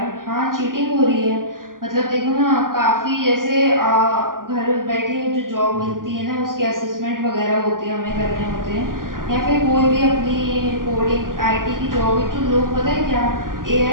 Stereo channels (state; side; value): late; left; 0.90 ms